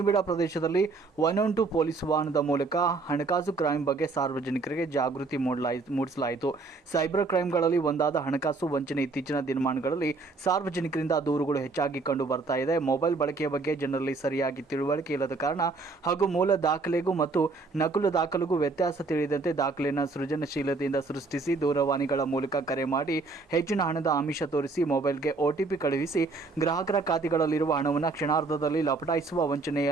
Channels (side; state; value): left; quieter; 3.8 dB